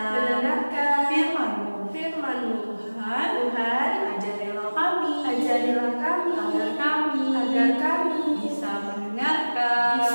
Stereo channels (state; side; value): inverted; both; correlation -1.00